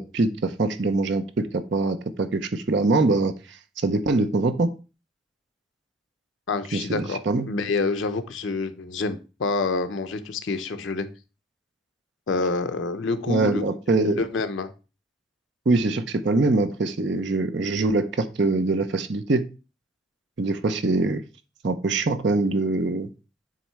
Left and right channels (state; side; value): normal; both; correlation 0.45